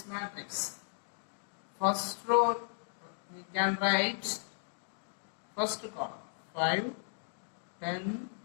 matrix. First row we can write first column 5, 10,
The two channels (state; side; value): silent; right; digital silence